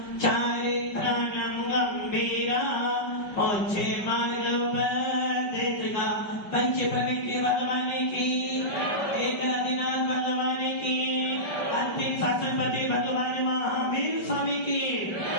चारित्राणं गंभीरा मोक्षे मार्गोपदेशका पंच प्रविष्टि भगवान की एकनाथनाथ भगवान की अंतिम शासनपति भगवान महावीर स्वामी की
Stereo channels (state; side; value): late; right; 5.1 ms